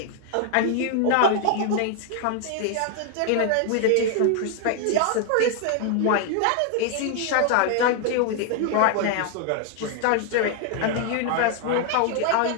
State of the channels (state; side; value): different; both; correlation 0.00